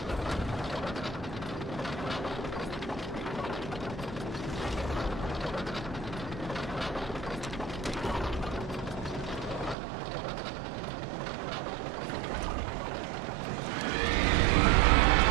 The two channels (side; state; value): left; drops out; at 9.8 s